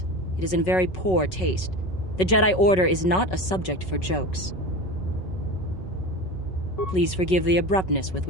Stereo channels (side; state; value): right; late; 5.3 ms